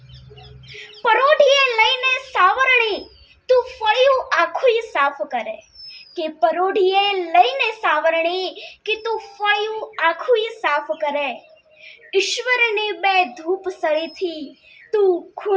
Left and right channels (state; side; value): identical; both; correlation 1.00